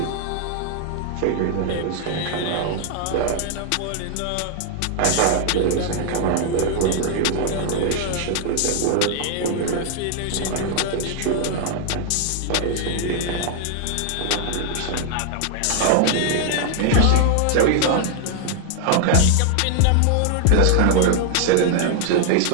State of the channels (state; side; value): different; both; correlation 0.00